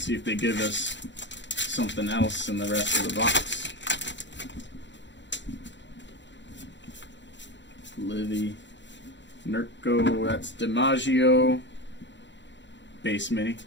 see if they give us something else in the rest of the box. Livy. Nurko, that's DiMaggio. Base mini.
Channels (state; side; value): late; right; 0.53 ms